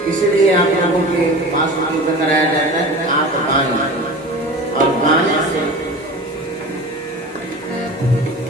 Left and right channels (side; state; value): both; normal; correlation 0.34